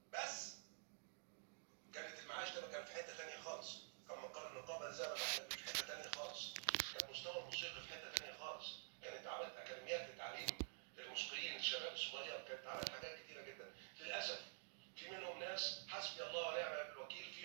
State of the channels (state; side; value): silent; left; digital silence